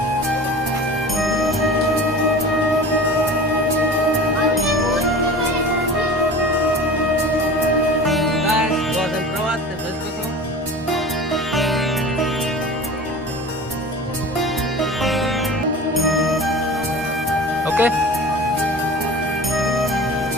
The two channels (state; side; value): normal; both; correlation 0.37